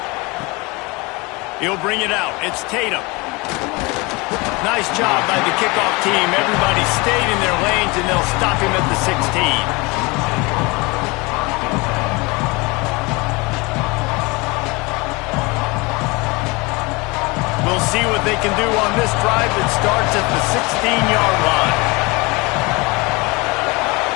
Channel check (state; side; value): quieter; right; 25.6 dB